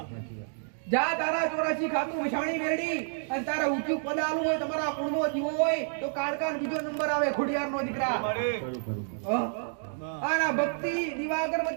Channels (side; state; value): left; silent; digital silence